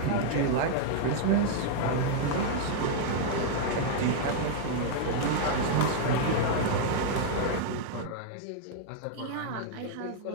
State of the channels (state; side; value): different; both; correlation -0.01